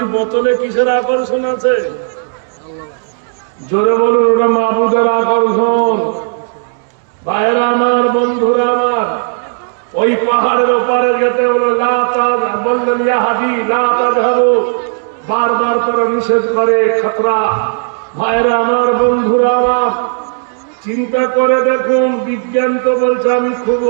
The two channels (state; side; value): silent; left; digital silence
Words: বোতলে কিসের আকর্ষণ আছে? জোরে বলুন, ওটা মাবুদের আকর্ষণ। ভাইরা আমার, বন্ধুরা আমার, ওই পাহাড়ের ওপারে যেতে হলো বললেন ইয়া হাজি লা তাযহাবু, বারবার করে নিষেধ করে, খতরা। ভাইরা আমার, বন্ধুরা আমার, চিন্তা করে দেখুন, বিজ্ঞান তো বলছে আমি খুব